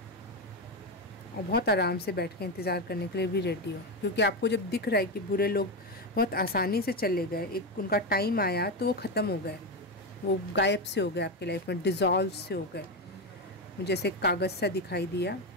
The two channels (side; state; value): both; normal; correlation 0.12